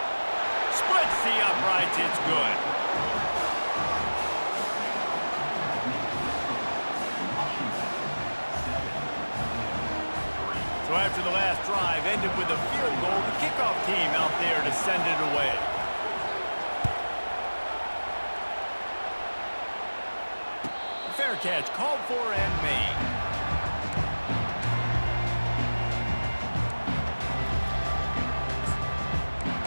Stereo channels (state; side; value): inverted; both; correlation -1.00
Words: Splits the uprights, it's good. So after the last drive ended with a field goal, the kickoff team out there to send it away. Fair catch called for and made.